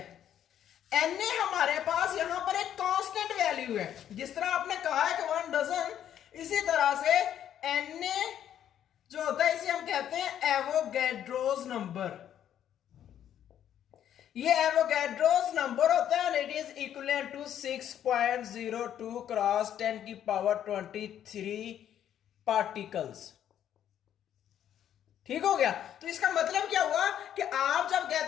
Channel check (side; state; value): right; quieter; 10.3 dB